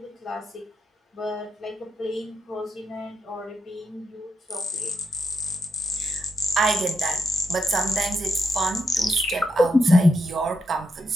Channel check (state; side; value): normal; both; correlation 0.79